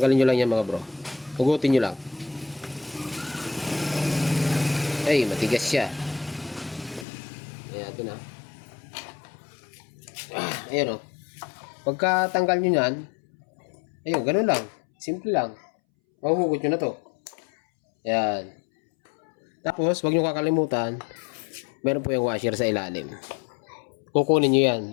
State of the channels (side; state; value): right; drops out; at 7.1 s